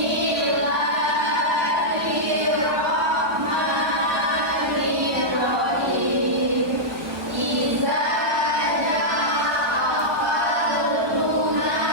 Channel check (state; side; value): late; left; 1.4 ms